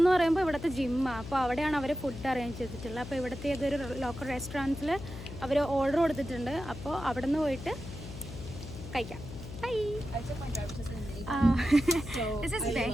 പറയുമ്പോൾ ഇവിടുത്തെ ജിമ്മാണ്. അപ്പോൾ അവിടെയാണ് അവർ ഫുഡ് അറേഞ്ച് ചെയ്തിട്ടുള്ളത്. അപ്പോൾ ഇവിടുത്തെ ഏതൊരു ലോക്കൽ റെസ്റ്റോറൻറ്റ്സിൽ അവർ ഓർഡർ കൊടുത്തിട്ടുണ്ട്. അപ്പോൾ അവിടെ നിന്ന് പോയിട്ട് കഴിക്കാം. Bye. I took my driver's license in April. This is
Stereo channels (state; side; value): noise; left; hum, 11 dB below the sound